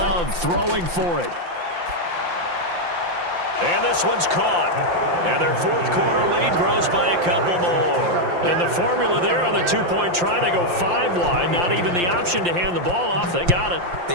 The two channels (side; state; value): left; late; 5.8 ms